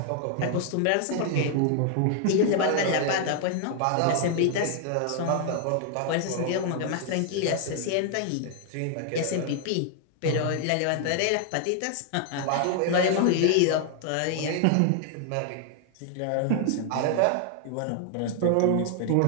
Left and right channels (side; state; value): both; different; correlation 0.00